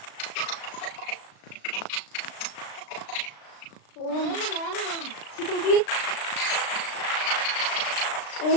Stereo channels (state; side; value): late; right; 36 ms